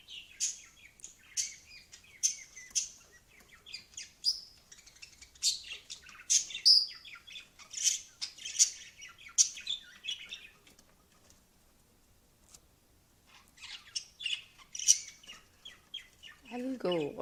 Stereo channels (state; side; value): identical; both; correlation 1.00